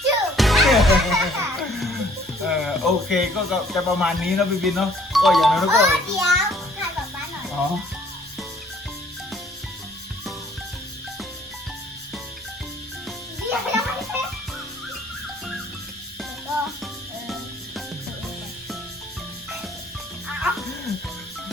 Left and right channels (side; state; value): both; normal; correlation 0.58